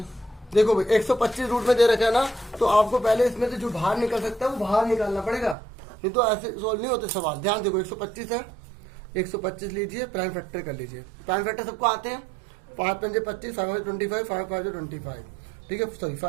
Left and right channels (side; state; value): left; drops out; at 5.6 s